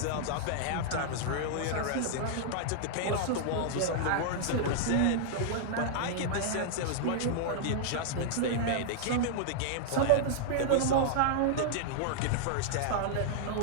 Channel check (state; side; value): different; both; correlation -0.01